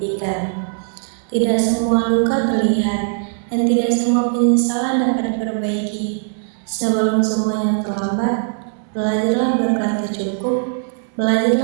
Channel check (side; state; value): left; silent; 66 dB below the other